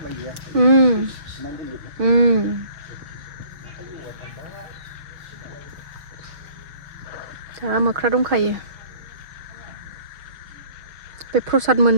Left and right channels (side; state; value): left; late; 5.6 ms